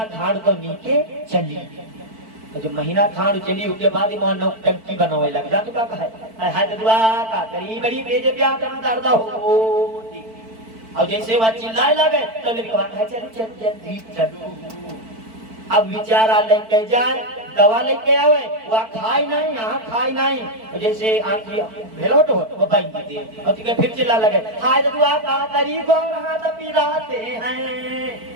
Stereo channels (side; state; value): left; late; 4.5 ms